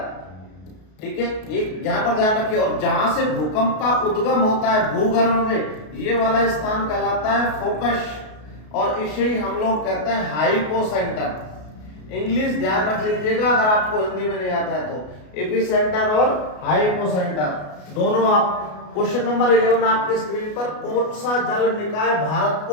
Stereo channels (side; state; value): right; late; 33 ms